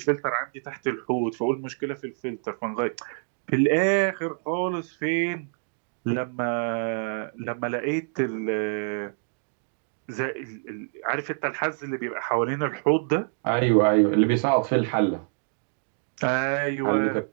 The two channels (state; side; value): silent; left; digital silence